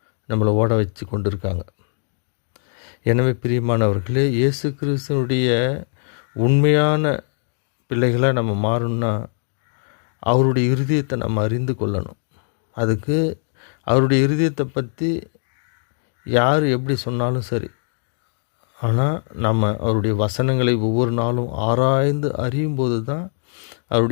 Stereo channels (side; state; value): right; silent; 59 dB below the other